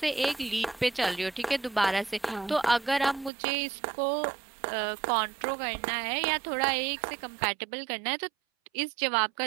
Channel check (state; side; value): drops out; left; at 3.3 s